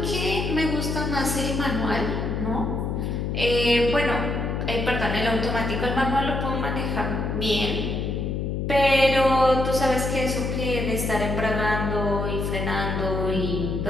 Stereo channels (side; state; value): left; noise; hum, 2 dB below the sound